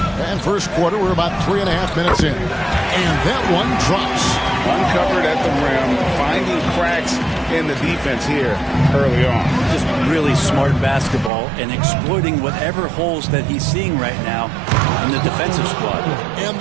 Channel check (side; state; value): left; drops out; at 11.3 s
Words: And first quarter, we're about 3.5 minutes in. And that one drops. Uncovered at the rim, finding cracks in the defense here early on. Just really smart basketball and exploiting whatever holes that he's seeing right now in the defensive squad. And